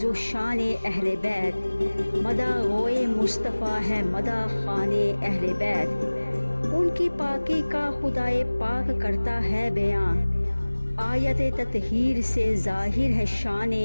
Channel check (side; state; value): both; inverted; correlation -1.00